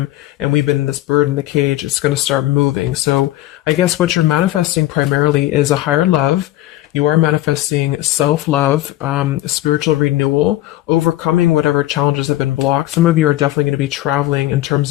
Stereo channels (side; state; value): right; quieter; 15.5 dB